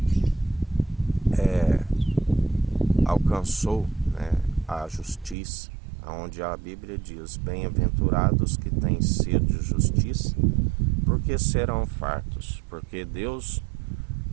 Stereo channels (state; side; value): drops out; left; at 5.4 s